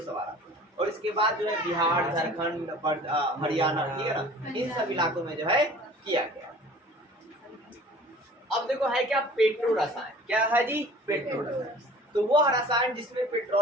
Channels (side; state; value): both; normal; correlation 0.46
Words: सवाल। और इसके बाद जो है बिहार, झारखंड, हरियाणा, ठीक है ना, इन सब इलाकों में जो है किया गया। अब देखो है क्या, पेट्रो रसायन। क्या है जी, पेट्रो रसायन। तो वो रसायन जिसमें